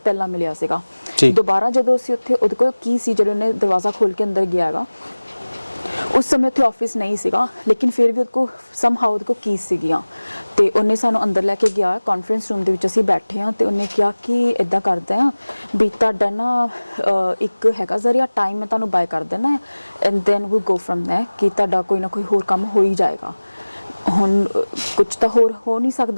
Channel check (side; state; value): both; inverted; correlation -1.00